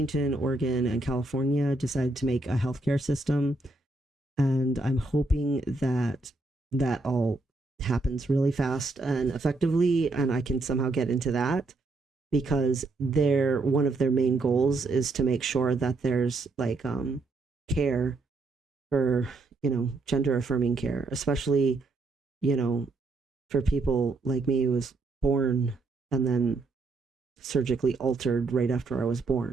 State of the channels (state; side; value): quieter; left; 3.2 dB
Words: Oregon, and California decided to make a healthcare system, and I'm hoping that that all happens really fast and effectively, and I can somehow get into that, because one of their main goals is to make sure that there's like care for, gender affirming care, especially, you know for people like me who was born and then surgically altered right after I was